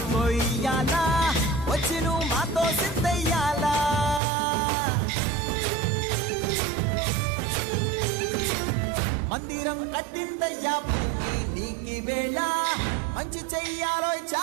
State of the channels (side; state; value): left; drops out; at 4.2 s